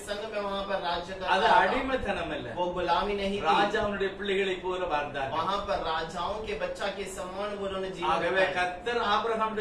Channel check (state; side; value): identical; both; correlation 1.00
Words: संग में वहाँ पर राज्य कर அது रहा था। அடிமைத்தனம் இல்ல. वो गुलामी नहीं थी। ராஜாவுடைய பிள்ளைகளை போல வாழ்ந்தார்கள். वहाँ पर राजाओं के बच्चा के समान वो उन्होंने जीवन ஆகவே बिताया। கர்த்தர்